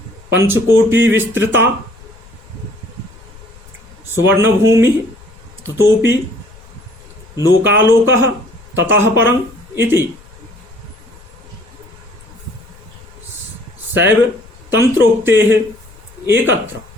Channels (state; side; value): noise; left; rumble, 23 dB below the sound